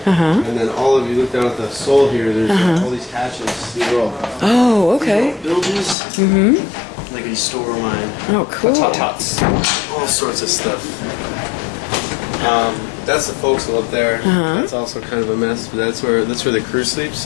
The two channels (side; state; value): right; drops out; at 6.0 s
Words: And then all of you look down at the sole here. There's all these hatches. These are all okay. buildings. Like a store of mine. Oh, cool. Tots. All sorts of stuff. That's the forecastle up there. That's also kind of a mess, but that's where the crew sleeps.